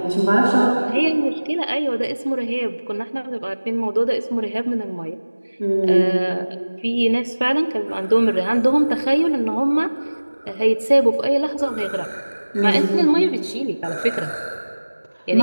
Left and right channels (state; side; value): inverted; both; correlation -1.00